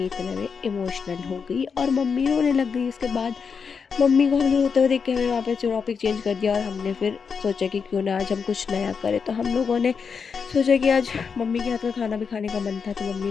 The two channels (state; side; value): quieter; right; 5.9 dB